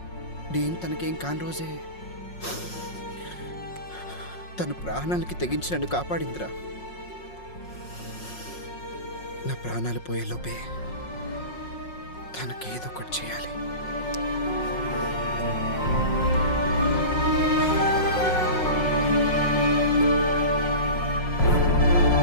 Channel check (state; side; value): late; right; 5.5 ms